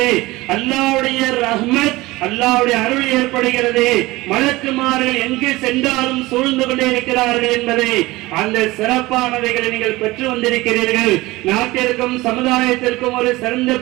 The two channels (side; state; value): left; quieter; 20.0 dB